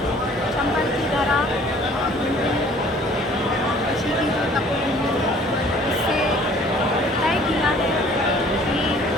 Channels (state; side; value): normal; both; correlation 0.54